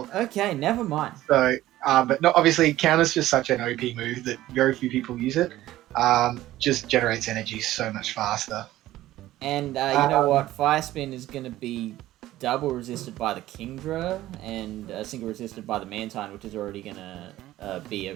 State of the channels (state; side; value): quieter; left; 15.1 dB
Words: Okay, never mind. So, but not obviously counter's just such an OP move that very few people use it. Just generates energy so much faster. And you know what? Fire spin is going to be double resisted by the Kingdra and single resisted by the Mantine, which is already going to be